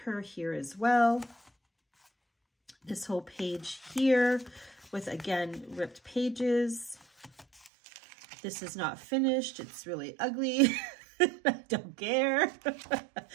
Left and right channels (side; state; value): left; drops out; at 7.7 s